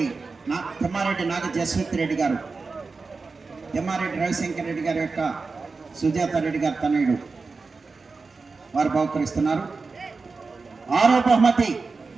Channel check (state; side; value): quieter; left; 4.2 dB